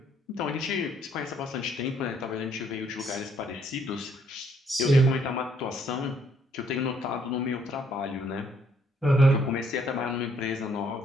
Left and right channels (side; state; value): both; normal; correlation 0.68